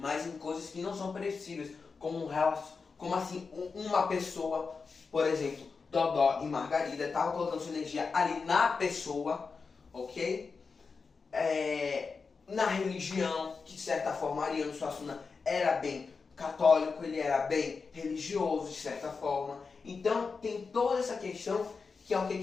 em coisas que não são perecíveis, como assim, uma pessoa, por exemplo, Dodó e Margarida, estavam colocando sua energia ali na pessoa, ok? Na religião, que de certa forma Ariano Suassuna era bem católico, ele era bem religioso, de certa forma. Então tem toda essa questão, que é o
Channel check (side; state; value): right; quieter; 4.8 dB